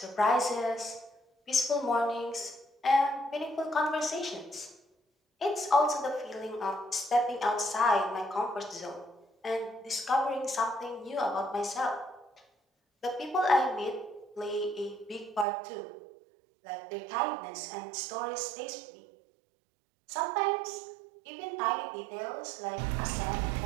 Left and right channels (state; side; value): drops out; left; at 15.5 s